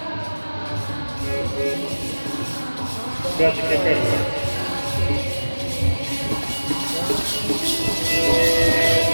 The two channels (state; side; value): inverted; both; correlation -1.00